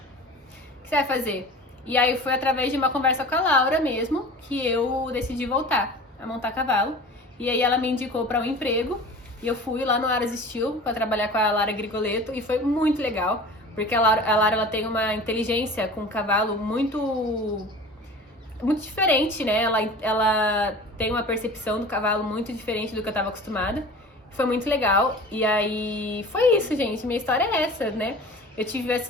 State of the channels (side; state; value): both; normal; correlation 0.39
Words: que você vai fazer? E aí foi através de uma conversa com a Laura mesmo que eu decidi voltar a montar cavalo. E aí ela me indicou para um emprego e eu fui lá no Aras Steel para trabalhar com a Lara Grigoletto e foi muito legal, porque a Lara ela tem uma inteligência com o cavalo muito diferente, né? Ela tem uma percepção do cavalo muito diferente do que eu estava acostumada. Foi muito legal. E aí foi isso, gente. Minha história é essa, né? Eu tive um